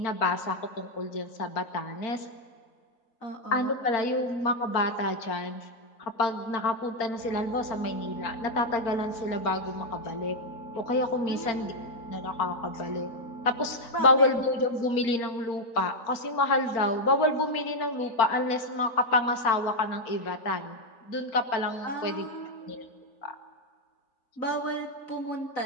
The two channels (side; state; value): right; late; 4.4 ms